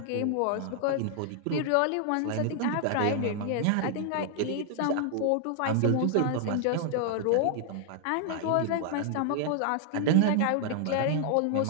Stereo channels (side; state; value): both; different; correlation 0.00